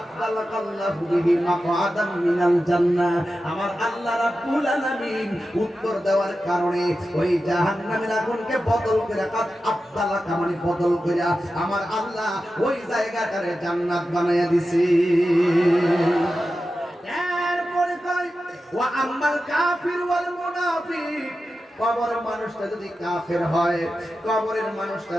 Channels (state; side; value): normal; both; correlation 0.92